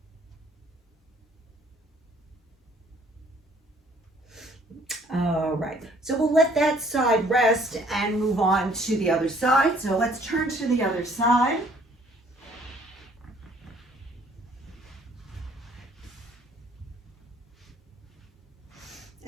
All right, so we'll let that side rest and move on to the other side. So let's turn to the other side.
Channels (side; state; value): both; normal; correlation 0.60